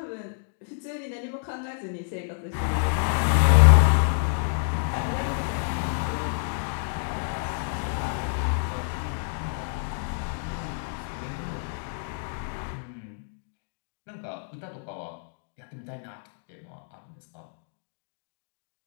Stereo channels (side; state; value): right; silent; digital silence